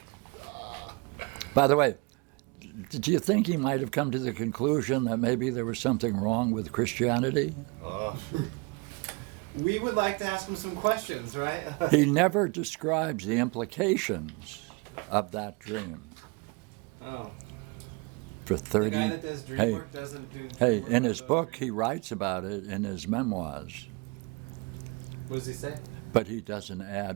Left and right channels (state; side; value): quieter; left; 29.7 dB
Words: By the way, do you think he might have come to the conclusion that maybe there was something wrong with Christianity? We would like to ask him some questions, right? He never describes the implications of that dream. Oh. For The 30 guy that does dream hey, work doesn't do hey, work in his about book dream. he writes about it in his memoirs, What does he say? but he doesn't